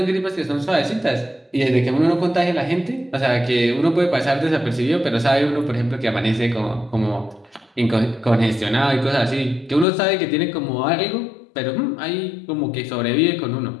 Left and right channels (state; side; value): drops out; right; at 9.9 s